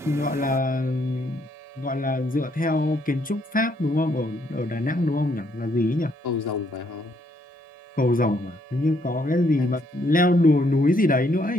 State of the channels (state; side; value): normal; both; correlation 0.71